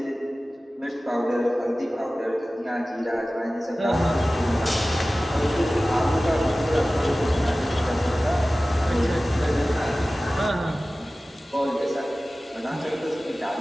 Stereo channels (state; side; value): normal; both; correlation 0.97